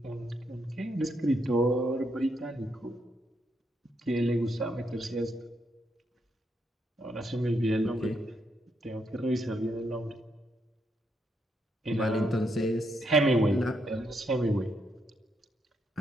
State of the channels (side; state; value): both; normal; correlation 0.78